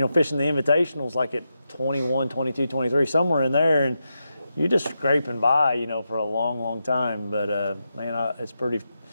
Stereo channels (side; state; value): both; inverted; correlation -0.87